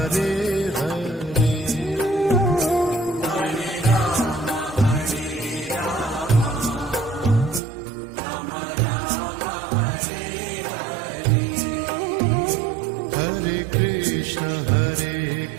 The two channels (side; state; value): left; drops out; at 7.6 s